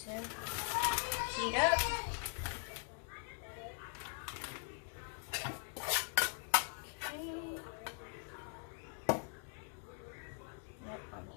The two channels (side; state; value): right; silent; 50 dB below the other